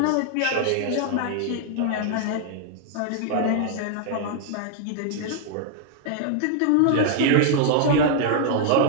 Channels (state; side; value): different; both; correlation 0.00